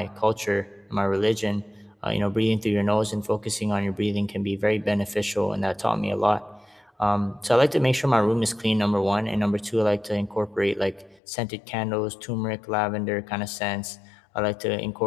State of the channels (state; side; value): drops out; right; at 11.2 s